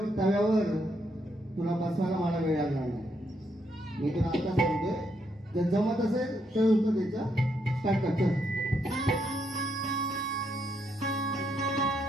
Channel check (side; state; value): both; normal; correlation 0.77